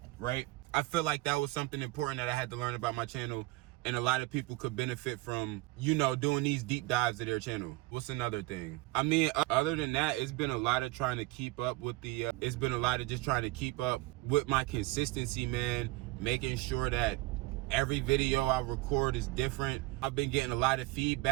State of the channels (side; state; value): left; quieter; 20.6 dB